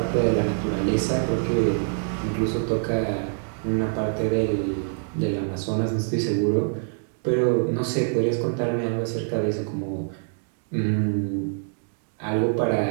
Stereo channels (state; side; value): silent; left; digital silence